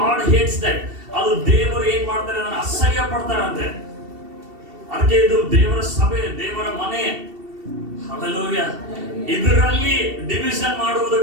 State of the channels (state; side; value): late; left; 2.7 ms